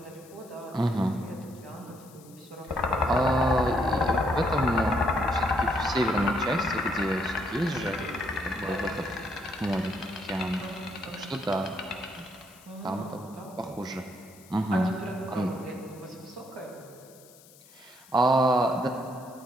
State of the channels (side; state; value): left; noise; hiss, 24 dB below the sound